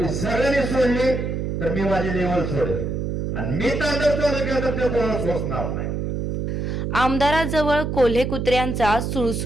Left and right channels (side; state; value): right; noise; hum, 2 dB below the sound